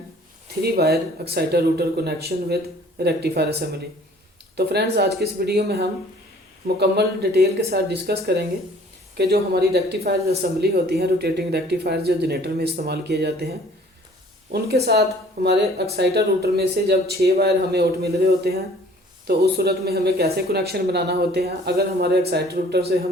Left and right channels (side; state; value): both; normal; correlation 0.54